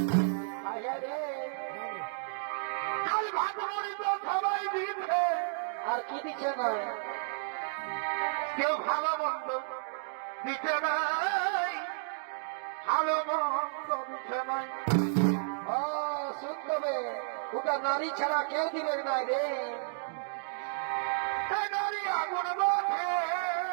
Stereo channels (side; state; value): left; silent; digital silence